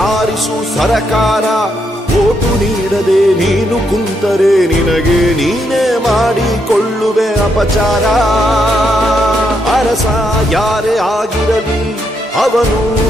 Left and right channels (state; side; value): normal; both; correlation 0.79